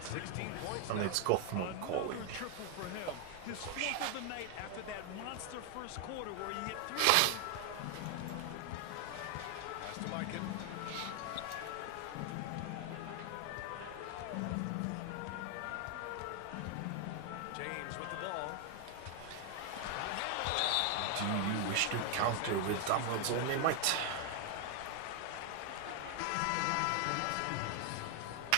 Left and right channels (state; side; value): different; both; correlation 0.01